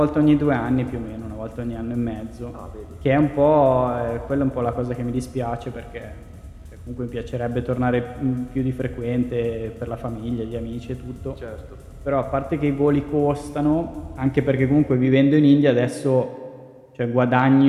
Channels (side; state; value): both; identical; correlation 1.00